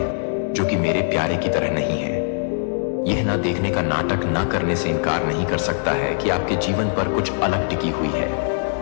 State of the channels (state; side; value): silent; right; digital silence